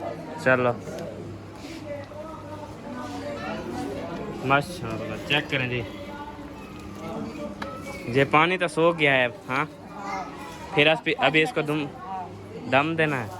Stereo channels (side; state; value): both; identical; correlation 1.00